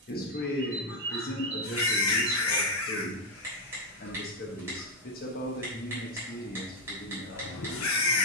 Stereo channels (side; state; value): both; normal; correlation 0.02